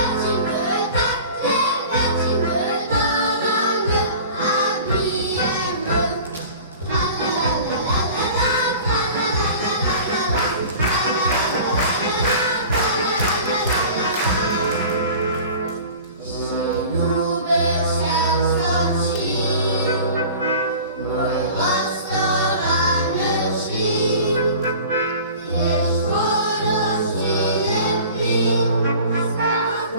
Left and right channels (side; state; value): both; inverted; correlation -0.42